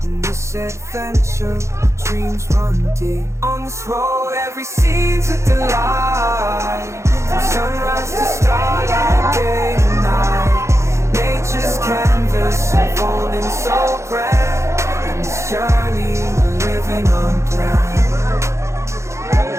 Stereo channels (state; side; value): late; left; 0.14 ms